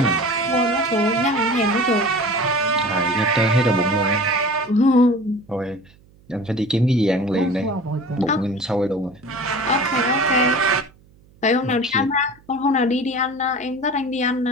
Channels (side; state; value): right; noise; hum, 29 dB below the sound